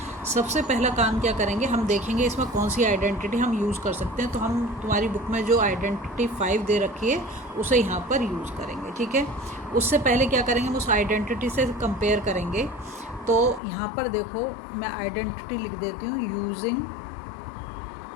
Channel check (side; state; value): right; drops out; at 13.6 s